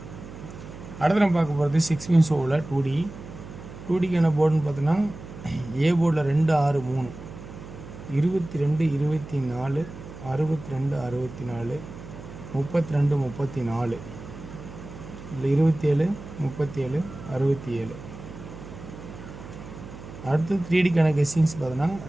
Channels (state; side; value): noise; right; hum, 14 dB below the sound